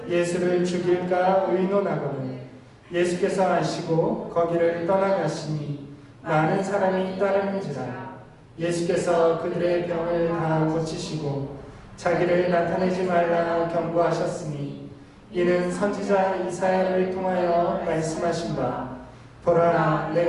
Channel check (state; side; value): identical; both; correlation 1.00